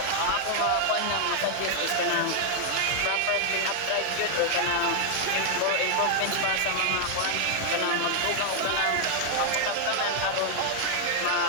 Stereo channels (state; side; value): different; both; correlation 0.00